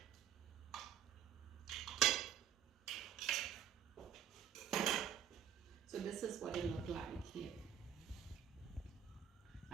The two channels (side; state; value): left; quieter; 9.4 dB